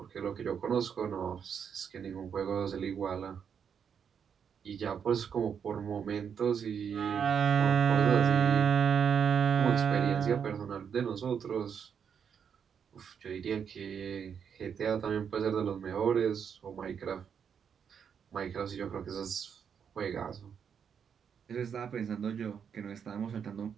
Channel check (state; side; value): quieter; left; 7.4 dB